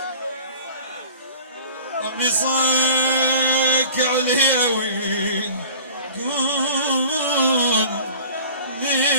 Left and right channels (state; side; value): inverted; both; correlation -0.45